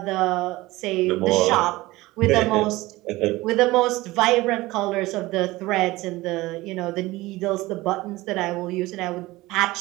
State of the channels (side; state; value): left; quieter; 19.4 dB